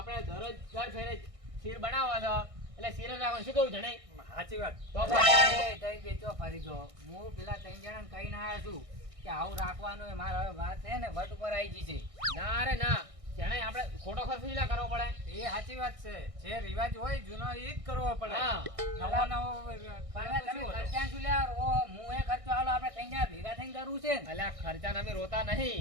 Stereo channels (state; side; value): late; left; 1.6 ms